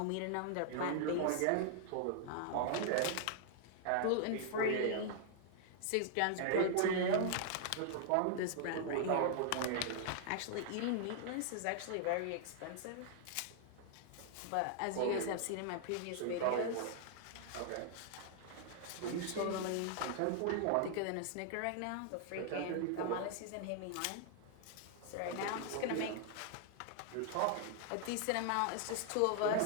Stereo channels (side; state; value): both; different; correlation -0.01